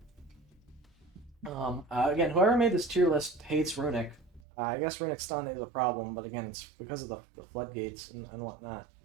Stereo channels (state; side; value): drops out; left; at 4.4 s